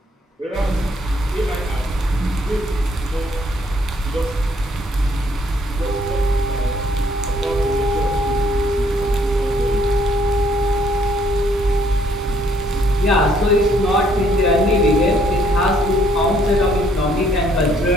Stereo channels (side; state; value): both; normal; correlation 0.66